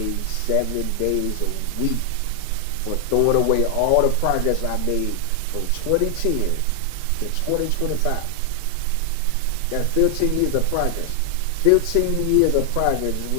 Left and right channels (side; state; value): both; different; correlation 0.00